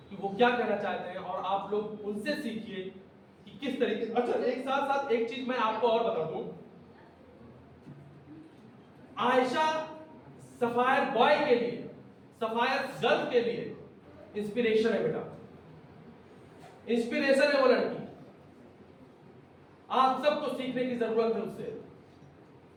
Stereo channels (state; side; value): identical; both; correlation 1.00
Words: कि वो क्या कहना चाहते हैं और आप लोग उनसे सीखिए कि किस तरीके से। अच्छा, एक साथ एक चीज मैं आपको और बता दूं, आयशा सफायर बॉय के लिए, सफायर गर्ल के लिए इंस्पिरेशन है बेटा, इंस्पिरेशन है वो लड़की। आप सबको सीखने की जरूरत है उससे,